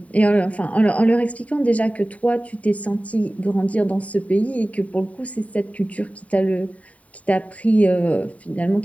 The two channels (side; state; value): right; late; 0.068 ms